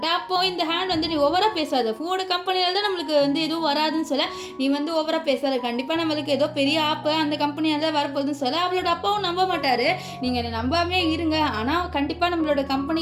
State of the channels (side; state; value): both; identical; correlation 1.00